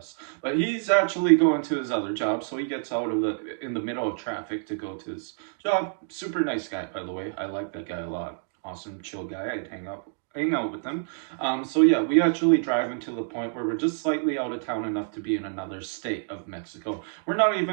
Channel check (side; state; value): left; silent; digital silence